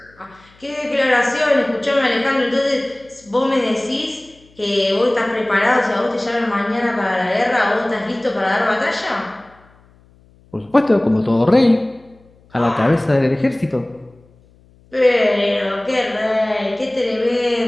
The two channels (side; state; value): left; noise; hum, 30 dB below the sound